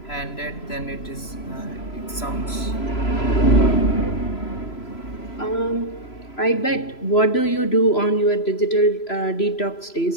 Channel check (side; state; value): right; late; 3.0 ms